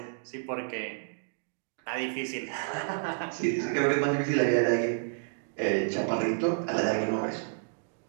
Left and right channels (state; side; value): silent; left; digital silence